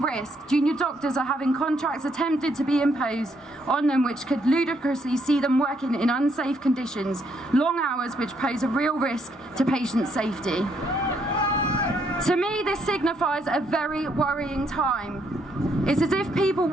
risked. Junior doctors are having contracts attempted to be imposed on them which could ludicrously see them working in unsafe conditions, long hours which pose a real risk to patient safety. To me, this signifies a very worrying time. It's as if people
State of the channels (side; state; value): both; normal; correlation 0.73